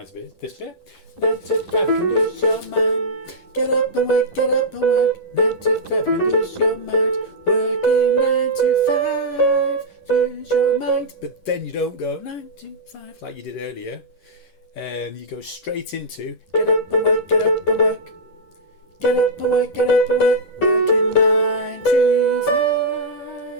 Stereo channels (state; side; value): late; right; 11 ms